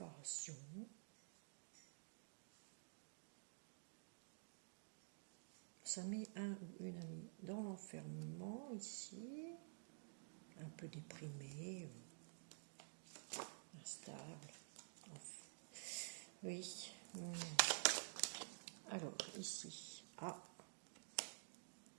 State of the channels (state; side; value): silent; left; digital silence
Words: ça met un ou une amie dans l'enfermement ici, un peu déprimé, instable. Oui. Alors, ici, on